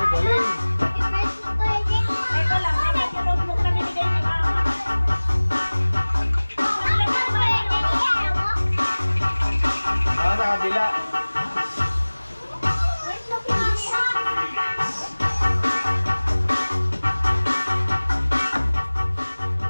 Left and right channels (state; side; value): inverted; both; correlation -1.00